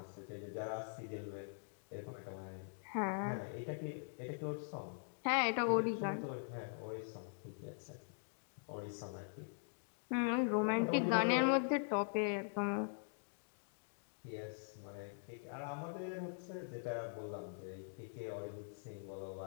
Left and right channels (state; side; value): silent; right; digital silence